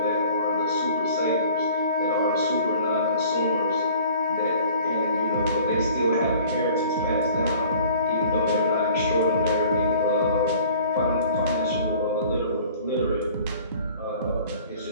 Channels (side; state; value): both; inverted; correlation -0.50